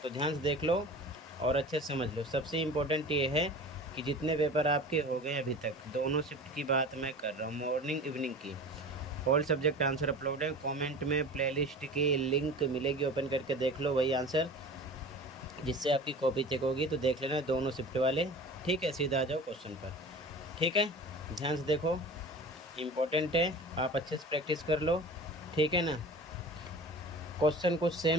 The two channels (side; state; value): both; normal; correlation 0.37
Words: तो ध्यान से देख लो और अच्छे से समझ लो। सबसे इम्पोर्टेंट ये है कि जितने पेपर आपके हो गए अभी तक, दोनों शिफ्ट की बात मैं कर रहा हूँ, मॉर्निंग इवनिंग की, ऑल सब्जेक्ट आंसर अपलोड है। कमेंट में प्लेलिस्ट की लिंक मिलेगी, ओपन करके देख लो वही आंसर, जिससे आपकी कॉपी चेक होगी। तो देख लेना दोनों शिफ्ट वाले। ठीक है, सीधा आ जाओ क्वेश्चन पर। ठीक है, ध्यान से देखो, इम्पोर्टेंट है, आप अच्छे से प्रैक्टिस कर लो। ठीक है ना, क्वेश्चन कुछ